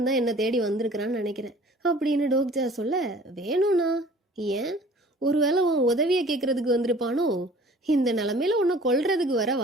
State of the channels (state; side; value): normal; both; correlation 0.49